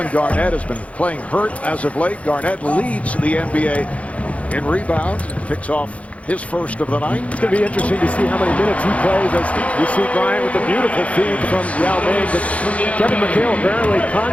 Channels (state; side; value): late; right; 0.065 ms